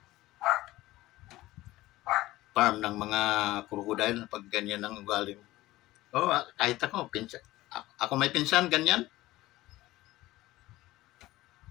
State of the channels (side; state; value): right; quieter; 17.4 dB